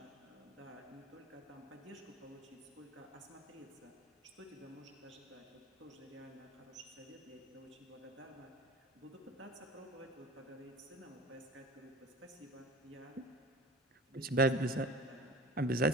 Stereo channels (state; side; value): normal; both; correlation 0.38